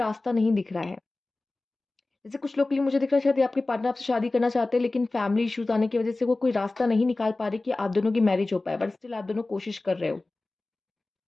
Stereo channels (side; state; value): right; quieter; 3.1 dB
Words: नहीं दिख रहा है। जैसे कुछ लोग के लिए मुझे दिख रहा है शायद ये आपके पार्टनर आपसे शादी करना चाहते हैं, लेकिन फैमिली इश्यूज़ आने की वज़ह से वो कोई रास्ता नहीं निकाल पा रहे कि आप दोनों की मैरिज हो पाए, बट स्टिल आप दोनों कोशिश कर रहे हो,